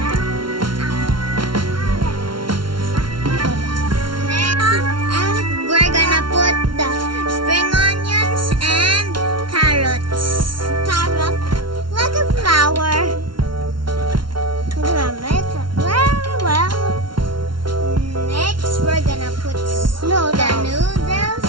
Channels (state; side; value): late; left; 0.73 ms